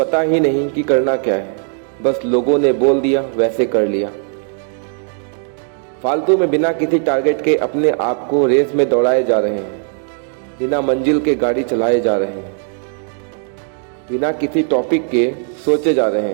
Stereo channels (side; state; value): left; silent; 55 dB below the other